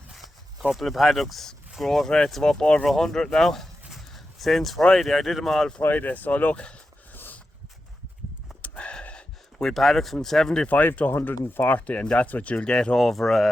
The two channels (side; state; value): both; normal; correlation 0.90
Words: Couple of paddocks, growth rates of up over 100 now. Since Friday, I did them all Friday, so look. We paddocks from 75 to 140, and that's what you'll get over